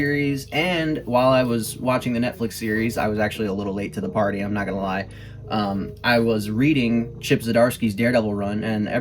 and while I was watching the Netflix series, I was actually a little late to the party, I'm not gonna lie. I was reading Chip Zdarsky's Daredevil run, and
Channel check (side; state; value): both; identical; correlation 1.00